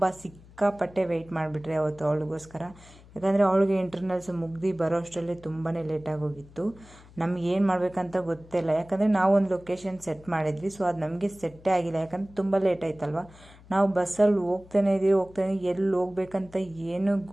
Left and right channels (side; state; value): left; noise; hum, 23 dB below the sound